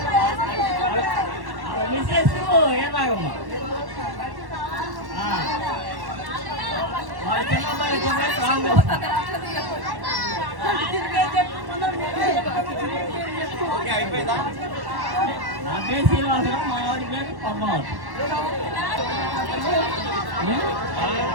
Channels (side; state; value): left; late; 1.1 ms